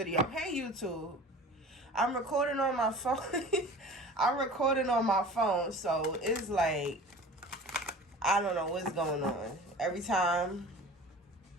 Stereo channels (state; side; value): normal; both; correlation 0.40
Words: Hey, YouTube. I'm recording on my phone. I'm recording on my phone, so it's like, I don't know what's going on. Every time,